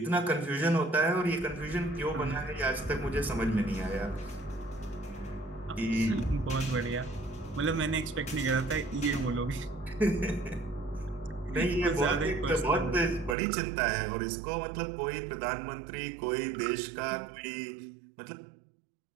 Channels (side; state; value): left; drops out; at 13.4 s